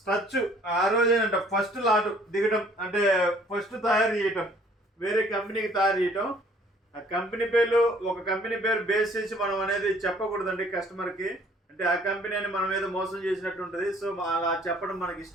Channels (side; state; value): both; normal; correlation 0.58